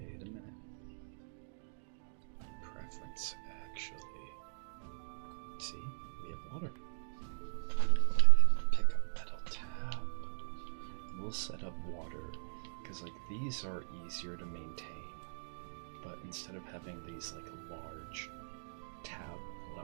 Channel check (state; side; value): silent; left; digital silence